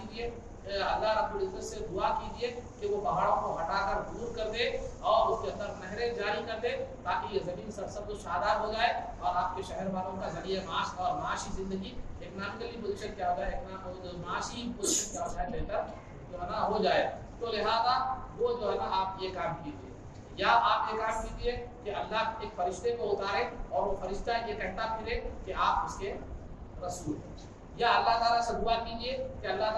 اللہ رب العزت سے دعا کیجیے کہ وہ پہاڑوں کو ہٹا کر دور کر دے اور اس کے اندر نہریں جاری کر دے تاکہ یہ زمین سرسبز و شاداب ہو جائے اور آپ کے شہر والوں کا ذریعہ معاش اور معاشی زندگی اکنامکلی پوزیشن کیا ہو جائے، معاشی پوزیشن کیا ہو جائے، بہتر جو ہے نا ہو جائے۔ تو لہذا وہ جو ہے نا آپ یہ کام کیجیے، یا آپ یہ کام کیجیے کہ اللہ ایک فرشتے کو اتارے اور وہ فرشتہ یہ کہتا پھرے کہ آپ اس کے رسول ہیں، یا اللہ تعالیٰ سے دعا کیجیے کہ اللہ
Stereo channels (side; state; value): both; identical; correlation 1.00